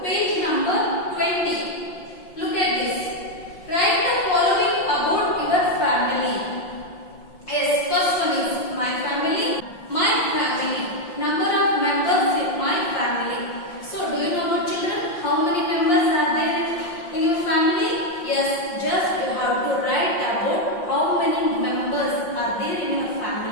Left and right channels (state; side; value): late; right; 5.6 ms